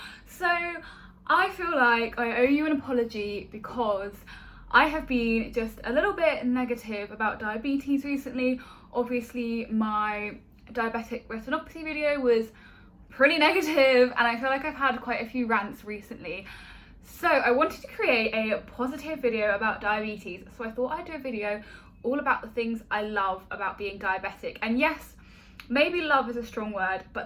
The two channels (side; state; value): both; identical; correlation 1.00